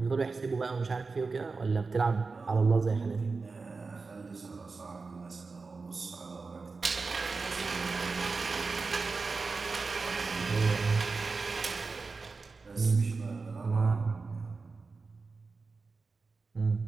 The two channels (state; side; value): quieter; left; 4.3 dB